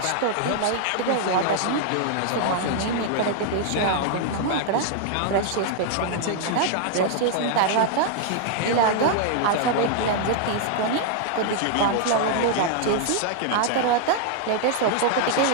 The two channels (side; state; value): both; different; correlation 0.00